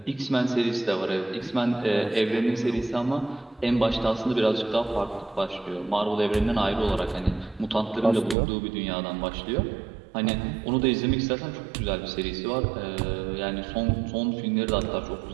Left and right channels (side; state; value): left; drops out; at 8.3 s